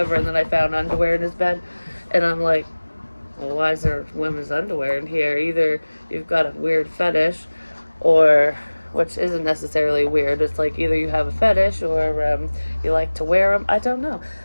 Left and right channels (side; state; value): both; inverted; correlation -1.00